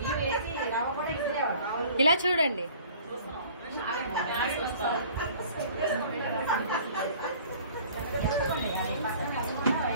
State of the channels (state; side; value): inverted; both; correlation -0.50